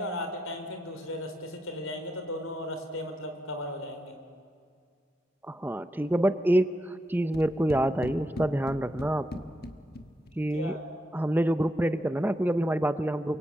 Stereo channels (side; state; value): both; normal; correlation 0.83